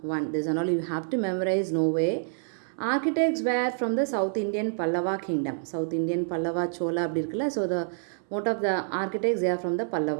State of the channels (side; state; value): left; silent; 60 dB below the other